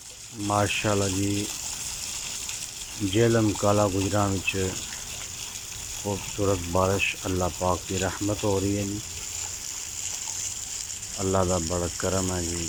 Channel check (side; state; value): both; identical; correlation 1.00